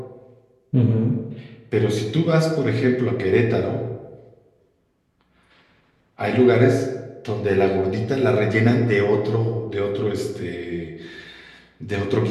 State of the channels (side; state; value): both; identical; correlation 1.00